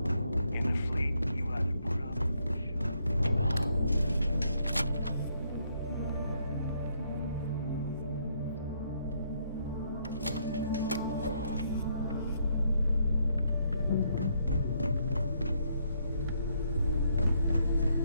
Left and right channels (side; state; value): both; inverted; correlation -0.73